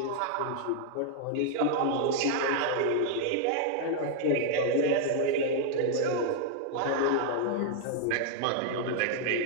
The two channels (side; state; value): both; different; correlation -0.01